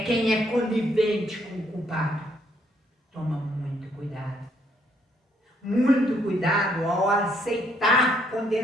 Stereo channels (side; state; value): both; normal; correlation 0.70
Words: quem é conivente com o culpado. Toma muito cuidado. Muito cuidado ao aceitar